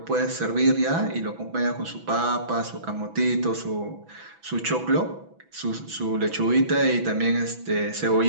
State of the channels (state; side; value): late; left; 6.0 ms